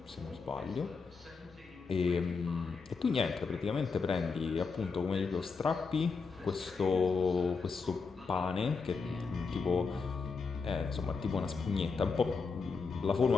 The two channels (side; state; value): right; quieter; 4.9 dB